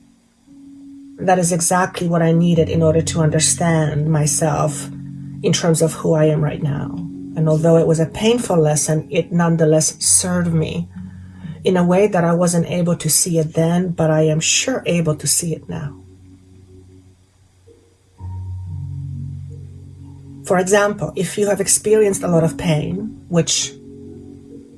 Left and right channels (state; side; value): identical; both; correlation 1.00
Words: that is exactly what I needed in order to understand myself in terms of who I am right now. And although it was a painful lesson, it nonetheless served me in a way that I wasn't able to see it then, but I am sure able to see it now. For example, if you have experienced a lot of pain, which